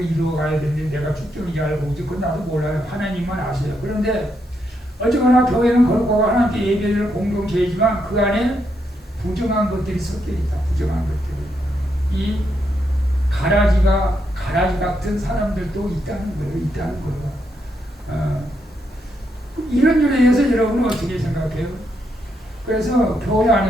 이루어가야 되는데 내가 쭉정인지 알고 있지 그건 나도 몰라요. 하나님만 아세요. 그런데 어쨌거나 교회는 거룩하고 하나님께 예배를 공동체이지만 그 안에 부정한 것들이 섞여 있다. 부정한 것들이. 이 가라지 같은 사람들도 있다는 거예요. 이런 일에 대해서 여러분은 어떻게 생각해요? 그래서 교회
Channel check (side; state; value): both; normal; correlation 0.80